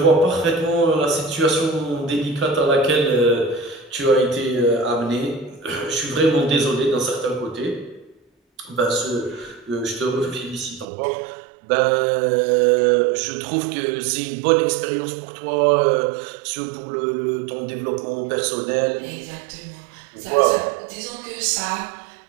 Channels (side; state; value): left; drops out; at 10.9 s